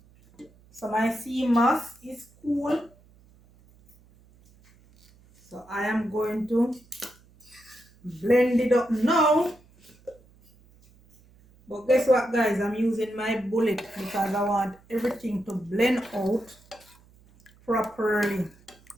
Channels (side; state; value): right; noise; hum, 28 dB below the sound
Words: So my sea moss is cool. So I am going to blend it up now. But guess what guys, I'm using my bullet because I want everything to blend out properly.